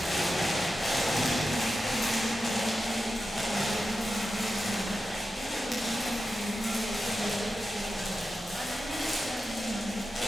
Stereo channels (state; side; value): normal; both; correlation 0.91